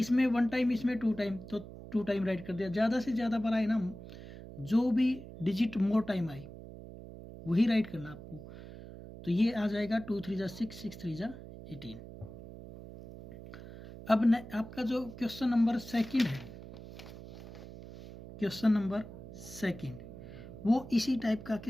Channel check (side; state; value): right; noise; hum, 14 dB below the sound